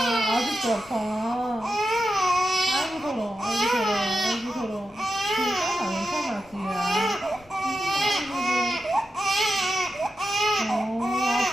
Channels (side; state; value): left; noise; rumble, 27 dB below the sound